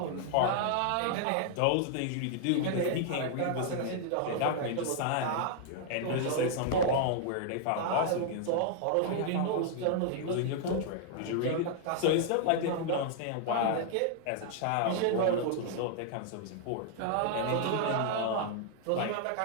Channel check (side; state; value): both; different; correlation -0.01